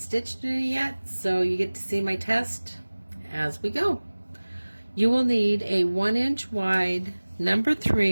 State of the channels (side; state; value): both; inverted; correlation -1.00